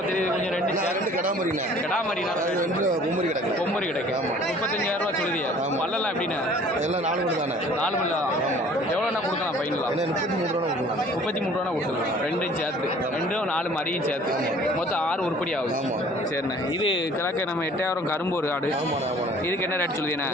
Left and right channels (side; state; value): both; normal; correlation 0.52